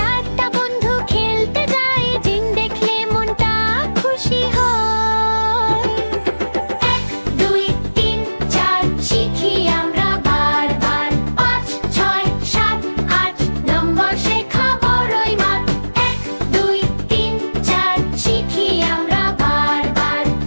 বন্ধু খেলতে যায়, জিন দেখলে মনটা খুশি হয়। 1 2 3 4 শিখি আমরা বারবার। 5 6 7 8 নম্বর শেখা বড়ই মাঠ। 1 2 3 4 শিখি আমরা বারবার।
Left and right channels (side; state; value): both; inverted; correlation -1.00